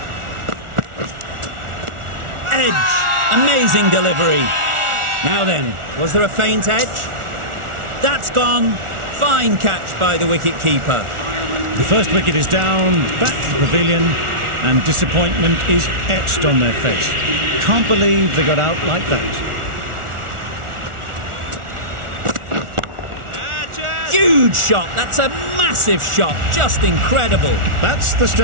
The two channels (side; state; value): left; late; 1.4 ms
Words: Edge. Amazing delivery. Now then, was there a feint edge? That's gone. Fine catch by the wicket-keeper. The first wicket is down, back to the pavilion, and disappointment is etched on their face. Can't believe they got out like that. Huge shot. That's a massive shot. Just incredible. That's the